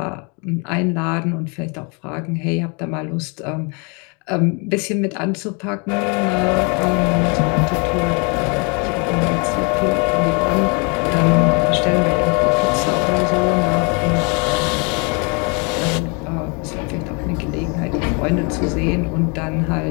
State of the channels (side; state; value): right; quieter; 33.5 dB